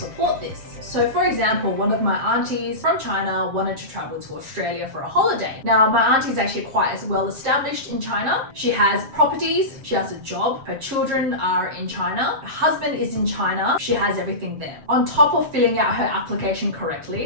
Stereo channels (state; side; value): late; left; 7.4 ms